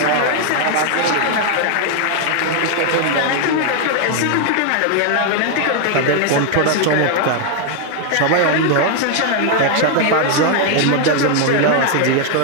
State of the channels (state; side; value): different; both; correlation 0.00